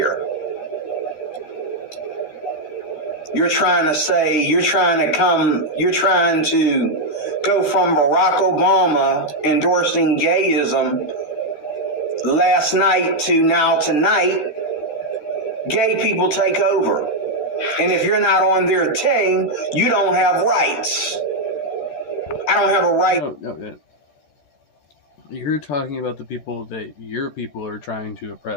You're trying to go from Barack Obama endorsing gayism last night to now tonight. Gay people take over. And if you're not on their team, you don't have rights. I don't have a right. No. You're talking about the people that your people are trying to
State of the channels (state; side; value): late; right; 14 ms